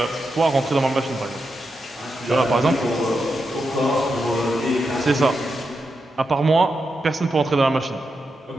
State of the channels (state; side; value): normal; both; correlation 0.86